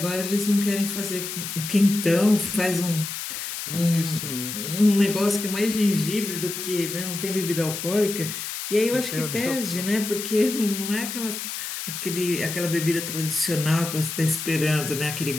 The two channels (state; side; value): noise; left; hiss, 6 dB below the sound